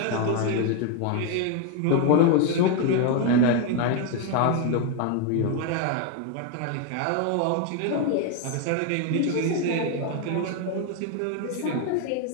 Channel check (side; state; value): both; different; correlation 0.01